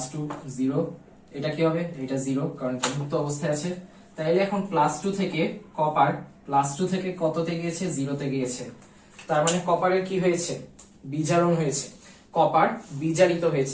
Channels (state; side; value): identical; both; correlation 1.00